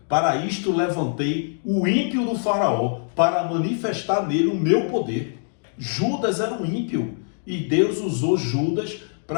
para isto levantei o ímpio do Faraó para manifestar nele o meu poder. Judas era um ímpio e Deus usou Judas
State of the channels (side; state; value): right; silent; digital silence